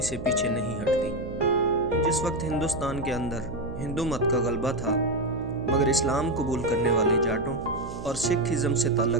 سے پیچھے نہیں ہٹتی۔ جس وقت ہندوستان کے اندر ہندو مت کا غلبہ تھا، مگر اسلام قبول کرنے والے جاٹوں اور سکھ ازم سے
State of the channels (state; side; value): noise; right; hum, 10 dB below the sound